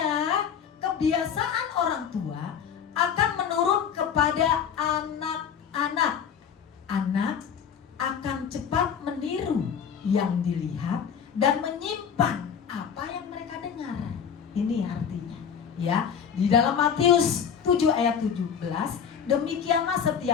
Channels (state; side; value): quieter; right; 7.6 dB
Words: kebiasaan orang tua akan menurun kepada anak-anak. Anak akan cepat meniru yang dilihat dan menyimpan apa yang mereka dengar. Ini artinya, ya. Di dalam Matius 7 ayat 17, demikianlah